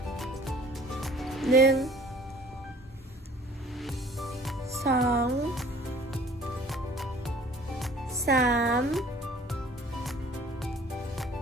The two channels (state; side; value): normal; both; correlation 0.52